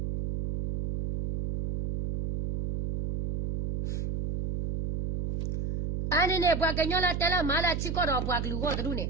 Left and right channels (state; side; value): noise; right; hum, 3 dB below the sound